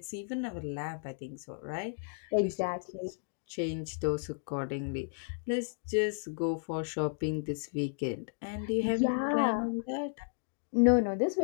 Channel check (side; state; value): right; silent; digital silence